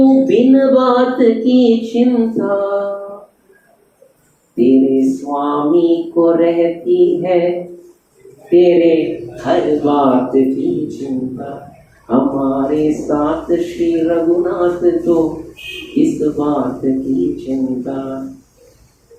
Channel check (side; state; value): both; identical; correlation 1.00